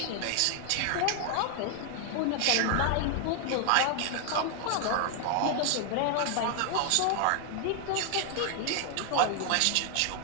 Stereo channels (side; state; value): both; different; correlation 0.00